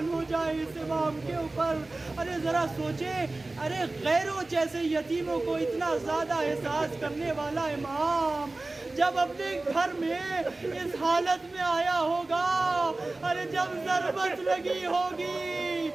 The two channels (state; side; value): quieter; left; 3.1 dB